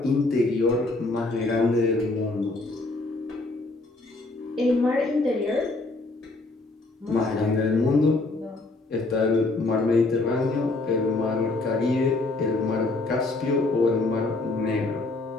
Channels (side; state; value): right; quieter; 3.2 dB